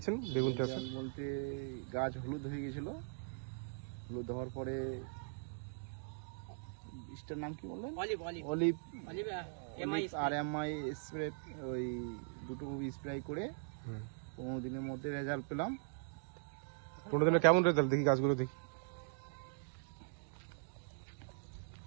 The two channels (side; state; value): left; silent; digital silence